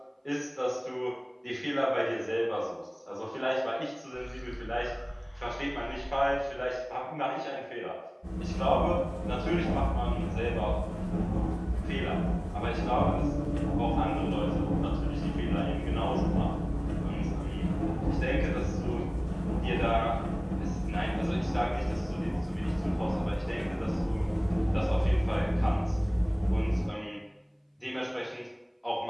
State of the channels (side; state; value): both; identical; correlation 1.00